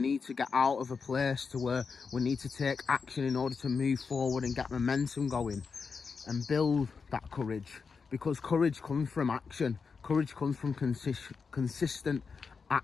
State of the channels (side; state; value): right; quieter; 5.3 dB